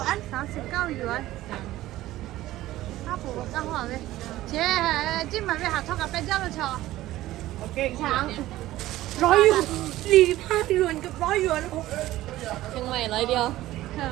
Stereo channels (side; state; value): left; quieter; 15.7 dB